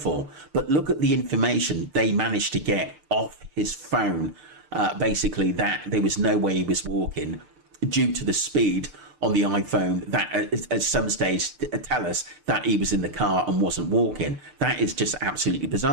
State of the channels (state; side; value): late; left; 6.7 ms